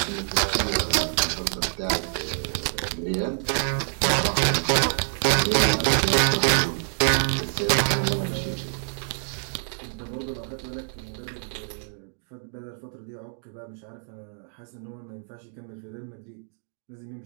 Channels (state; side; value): silent; left; digital silence